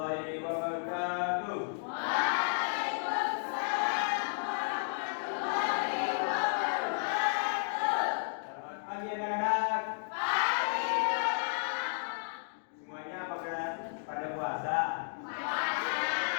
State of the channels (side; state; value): right; silent; digital silence